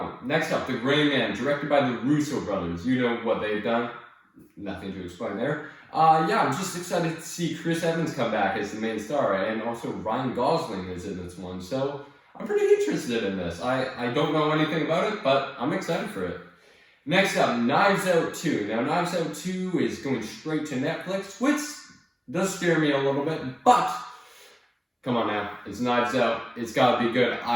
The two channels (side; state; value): both; identical; correlation 1.00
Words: one. Next up, The Gray Man, directed by the Russo brothers. You know what they've done. Nothing to explain there. Yeah, I'm just excited to see Chris Evans come back as the main star. And also Ryan Gosling is in this one. So I'm pretty interested in this. I don't know anything about it, but I'm excited for it. Next up, Knives Out 2. Now, Knives Out 2 is going straight to Netflix, which does scare me a little bit, but come on now, it's Knives Out. It's got to be good.